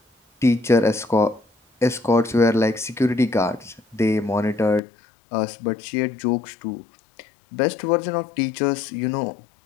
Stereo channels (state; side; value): drops out; right; at 4.8 s